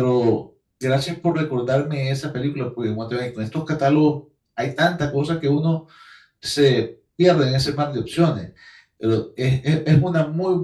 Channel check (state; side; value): identical; both; correlation 1.00